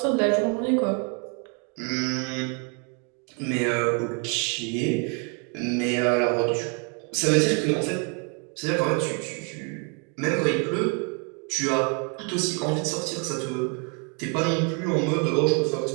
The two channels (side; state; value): left; quieter; 37.0 dB